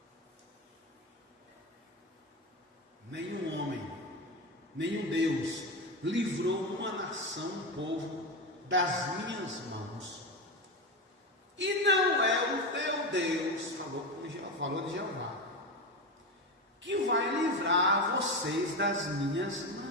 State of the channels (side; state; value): both; normal; correlation 0.17